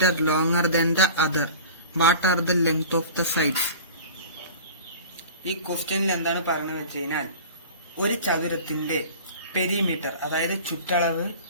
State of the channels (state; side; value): inverted; both; correlation -0.39